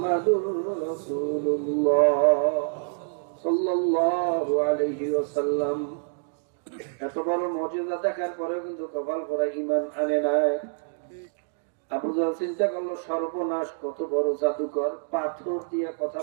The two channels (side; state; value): left; silent; digital silence